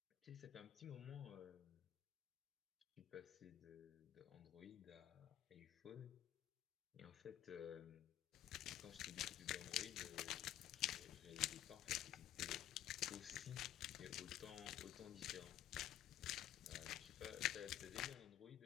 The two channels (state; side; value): quieter; right; 12.0 dB